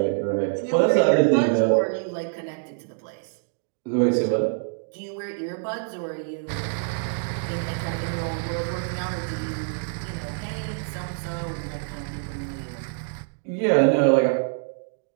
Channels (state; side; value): silent; left; 61 dB below the other